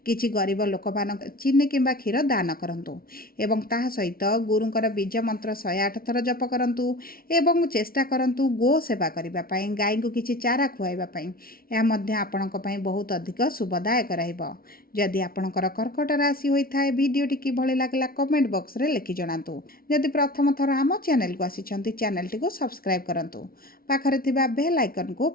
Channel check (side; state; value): right; late; 0.43 ms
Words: किछि गरीब लोक मान चीनी किंबा क्षीर दान करंतु एवं ताहा सहित गुरुंकर बीज मंत्र 108 थर जप करंतु एवं चेष्टा करंतु गो सेवा करबा पई गाय को किछि चारा खुआइबा पई या मध्य आपणक पई बहुत अधिक शुभदायक रहइबो। जदि आपणकर कर्कट राशि होइथाय वीडियोटी किभଳି लागला कमेंट बॉक्स रे लिखि जणातु। जदि प्रथम थर आम चैनल को आसिछंती चैनल टी को सब्सक्राइब करंतु पाखरे थिबा बेल आइकन को